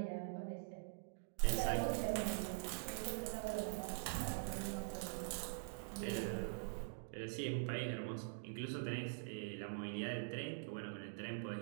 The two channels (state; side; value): silent; left; digital silence